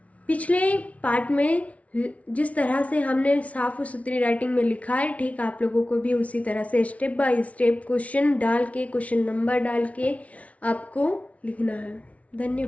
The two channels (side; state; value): right; late; 0.066 ms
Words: पिछले पार्ट में जिस तरह से हमने साफ और सुथरी राइटिंग में लिखा है, ठीक आप लोगों को भी उसी तरह से स्टेप बाय स्टेप क्वेश्चन डाल के, क्वेश्चन नंबर डाल के आपको लिखना है।